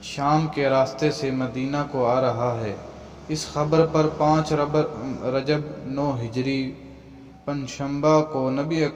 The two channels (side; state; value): both; identical; correlation 1.00